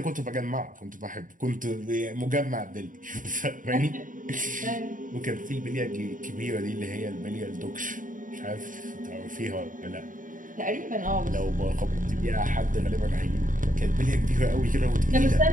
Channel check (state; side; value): late; left; 0.39 ms